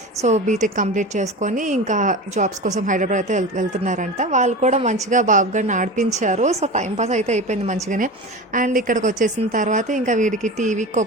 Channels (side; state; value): both; normal; correlation 0.29